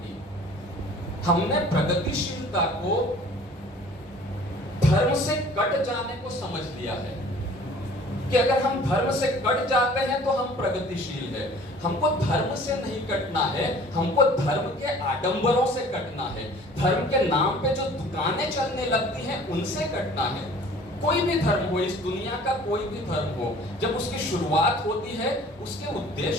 हमने प्रगतिशीलता को धर्म से कट जाने को समझ लिया है कि अगर हम धर्म से कट जाते हैं तो हम प्रगतिशील है। हमको धर्म से नहीं कटना है, हमको धर्म के आडंबरों से कटना है। धर्म के नाम पे जो दुकानें चलने लगती हैं उनसे कटना है। कोई भी धर्म हो, इस दुनिया का कोई भी धर्म हो, जब उसकी शुरुआत होती है उसके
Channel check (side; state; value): both; normal; correlation 0.49